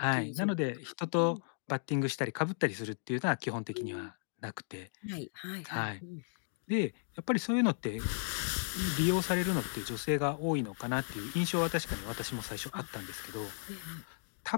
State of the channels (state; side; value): silent; right; digital silence